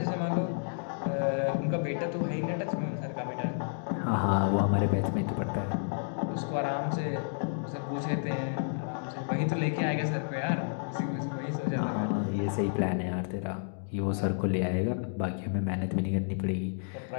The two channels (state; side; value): silent; right; digital silence